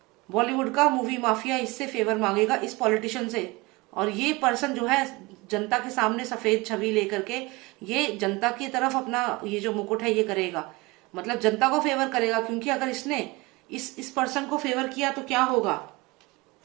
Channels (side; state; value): left; quieter; 23.5 dB